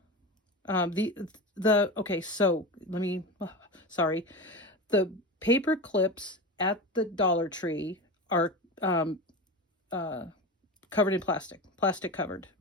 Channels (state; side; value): normal; both; correlation 0.25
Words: Okay, so sorry. The paper clips at the Dollar Tree are covered in plastic covered,